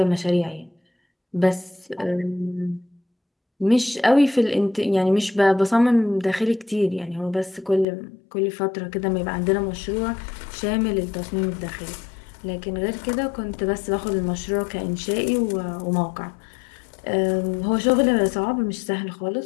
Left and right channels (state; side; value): drops out; right; at 7.9 s